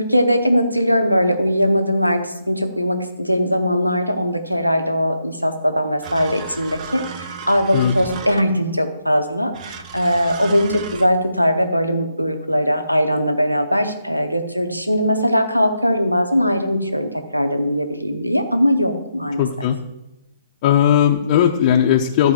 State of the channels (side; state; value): both; inverted; correlation -0.78